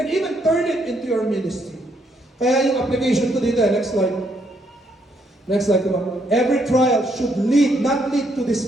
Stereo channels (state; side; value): normal; both; correlation 0.73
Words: even turn it into your ministry. Kaya yung application ko dito, next slide. Next slide, come on. Every trial should lead, not lead to